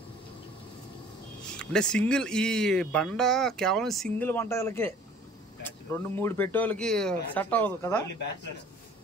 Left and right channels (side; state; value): both; normal; correlation 0.50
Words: అంటే సింగిల్. ఈ బండ కేవలం సింగిల్ వంటలకే, 2-3 పెట్టేవాళ్ళకి సెట్ అవ్వదు కదా.